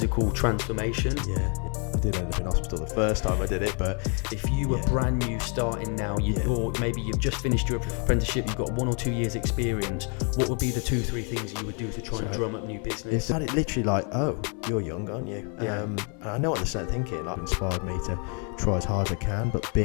transformation. Yeah, I did end up in hospital the first time I did it, but if you were brand new starting now, or maybe you've just finished your apprenticeship, you've got 1 or 2 years experience, what would be the 2-3 things you would do to try and drum up new business? It's literally like, oh, you're young, aren't you? Yeah. And I know what they're starting thinking. Like, inspired me to try as hard as I can, but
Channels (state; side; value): quieter; right; 38.2 dB